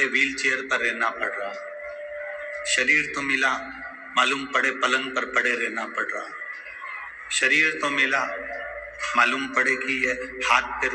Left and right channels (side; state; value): both; identical; correlation 1.00